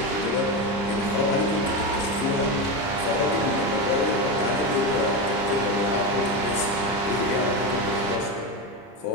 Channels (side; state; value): right; late; 30 ms